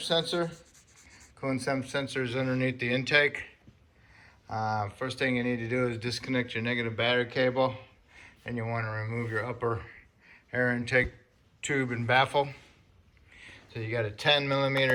Coolant temp sensor is underneath the intake. First thing you need to do is disconnect your negative battery cable, and you want to remove your upper air intake tube and baffle. So you got a 10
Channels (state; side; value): identical; both; correlation 1.00